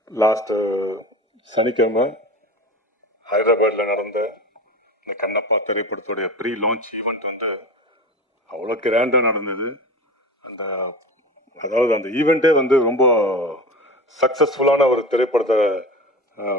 லாஸ்ட்டு சனிக்கிழமை ஹைதராபாத்தில் நடந்த இந்த கண்ணப்பா திரைப்படத்துடைய ப்ரீ லான்ச் ஈவெண்ட் வந்து அவ்வளோ கிராண்டாக நடந்தது. அதாவது அந்த ஈவெண்ட்டே வந்து ரொம்ப சக்ஸஸ்ஃபுல்லான ஒரு திரைப்படத்தை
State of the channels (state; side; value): normal; both; correlation 0.31